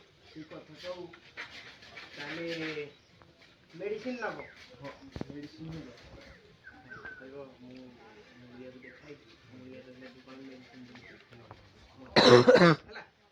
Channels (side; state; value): both; identical; correlation 1.00